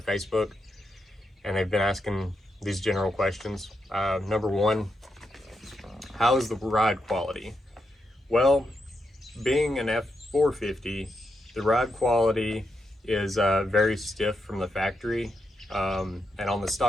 Facebook, and they've been asking these general questions. Number one, how is the ride quality? Well, being an F450, the ride quality is very stiff from the factory, and on the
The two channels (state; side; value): normal; both; correlation 0.84